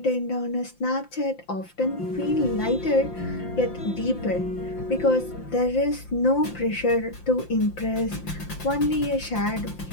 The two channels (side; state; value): right; late; 5.8 ms